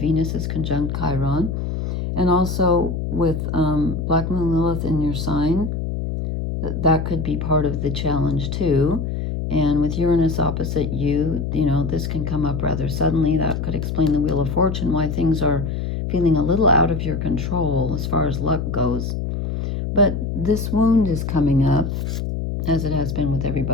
is conjunct Chiron, and also with Black Moon Lilith in your sign. That could be part of the challenge too. And with Uranus opposite you, you know, this can come up rather suddenly. That could explain the Wheel of Fortune, why things are feeling a little out of your control as far as luck goes. But this wound is coming up, as it has been with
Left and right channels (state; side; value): noise; left; hum, 3 dB below the sound